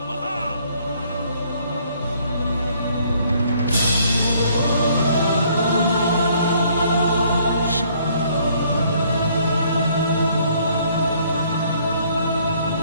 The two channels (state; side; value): inverted; both; correlation -0.63